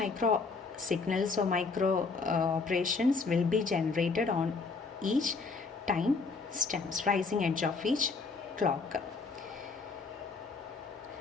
signals or micro operations will be generated on each time stamps, rising edge of each clock.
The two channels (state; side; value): quieter; right; 4.3 dB